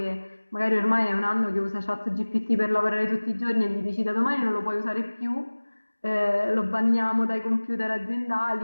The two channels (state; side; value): inverted; both; correlation -1.00